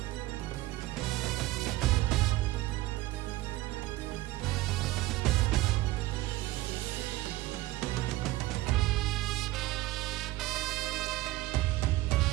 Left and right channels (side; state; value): left; quieter; 17.5 dB